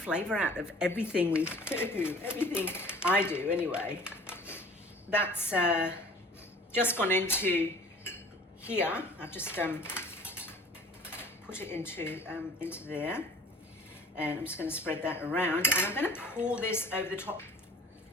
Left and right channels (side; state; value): both; normal; correlation 0.47